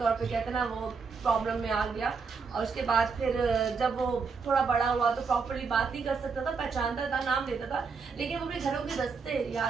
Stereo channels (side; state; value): left; quieter; 5.1 dB